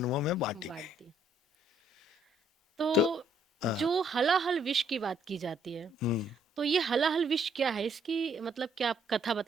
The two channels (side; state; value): both; normal; correlation 0.68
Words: में बांटी बांट गई। दी। तो तो हाँ, जो हलाहल विष की बात की जाती है, हम्म। तो ये हलाहल विष क्या है? इसकी मतलब क्या आप कथा